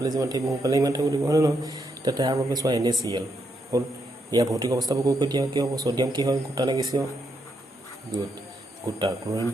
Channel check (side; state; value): both; normal; correlation 0.79